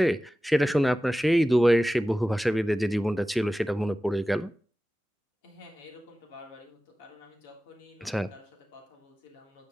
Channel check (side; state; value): both; normal; correlation 0.96